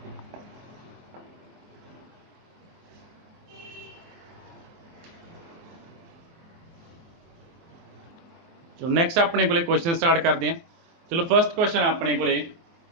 चलो नैक्सट अपने को क्वेश्चन स्टार्ट करते हैं। चलो फर्स्ट क्वेश्चन अपने को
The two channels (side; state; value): left; late; 24 ms